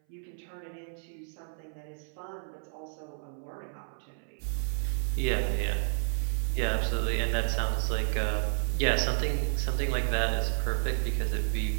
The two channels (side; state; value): left; silent; 57 dB below the other